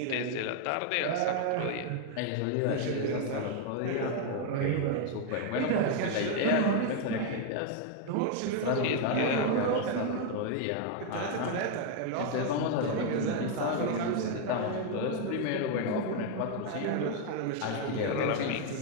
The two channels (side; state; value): both; different; correlation 0.01